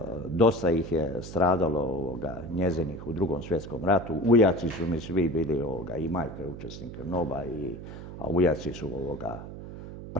dosta ih je stradalo njezinih u Drugom svjetskom ratu. Ujaci su mi svi bili, i majka je učesnik NOB-a, a ujaci su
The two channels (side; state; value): right; noise; hum, 11 dB below the sound